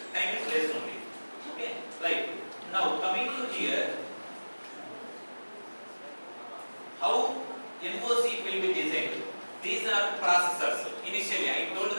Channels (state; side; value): inverted; both; correlation -1.00